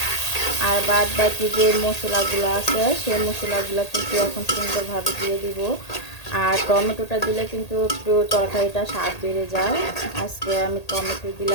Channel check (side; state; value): right; late; 1.8 ms